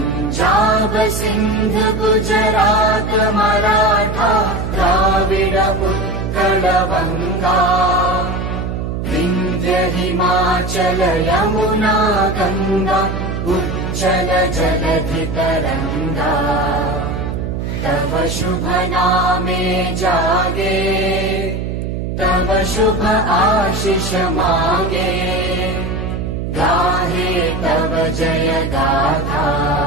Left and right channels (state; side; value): noise; right; hum, 3 dB below the sound